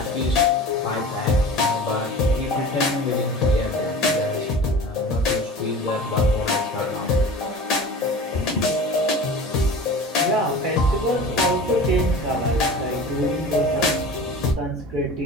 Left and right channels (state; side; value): normal; both; correlation 0.37